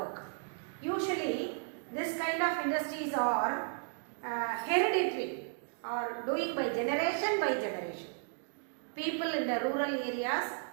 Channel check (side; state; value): left; silent; digital silence